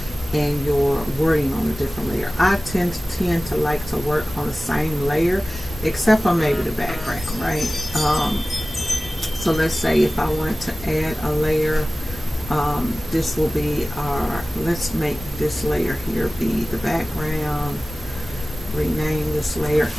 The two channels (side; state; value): both; normal; correlation 0.97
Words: and your wording on a different layer. I tend to like to work on the same layer, except for maybe the background, right? So let's say if I wanted to add a layer, this will be our, let's make this layer here be the background, rename this layer